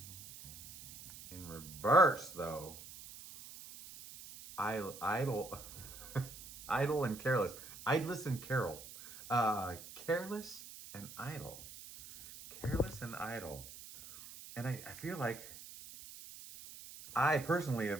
In reverse, though, idle, idle and careless. Idless and carol. Careless and idle. Careless and idle. And I feel like I personally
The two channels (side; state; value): right; noise; hiss, 14 dB below the sound